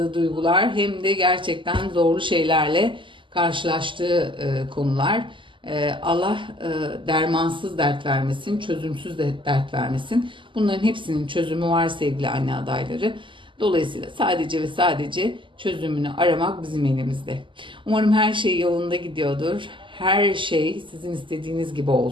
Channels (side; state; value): left; late; 0.24 ms